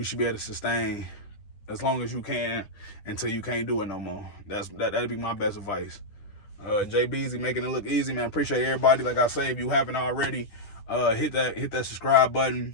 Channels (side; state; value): right; late; 10 ms